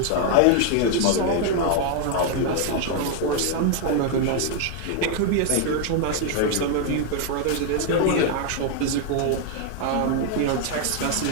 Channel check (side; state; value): both; different; correlation 0.00